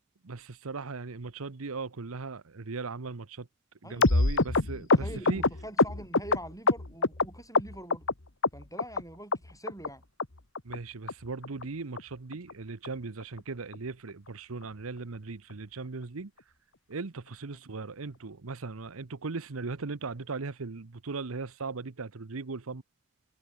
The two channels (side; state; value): both; normal; correlation -0.05